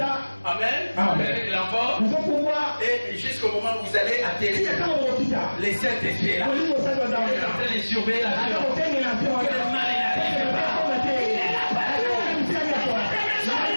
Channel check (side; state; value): both; inverted; correlation -1.00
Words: Amen. Amen. L'envol. Et jusqu'au moment où vous allez atterrir, les Saint-Esprit là. Vous êtes en train de surveiller l'avion. Quel mal il n'arrive pas.